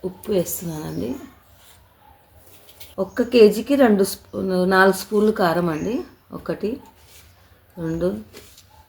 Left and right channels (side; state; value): both; identical; correlation 1.00